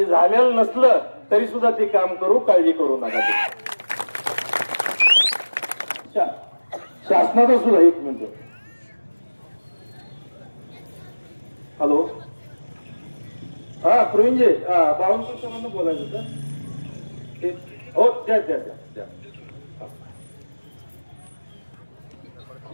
झालेलं नसलं तरी सुद्धा ते काम करू, काळजी करू नका. शासनाचा सुद्धा एक मिनिट. हॅलो, हा प्रवीणजी, बावनकर सरांना बोलायचं सर. हो, द्या द्या द्या द्या.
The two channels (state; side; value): inverted; both; correlation -1.00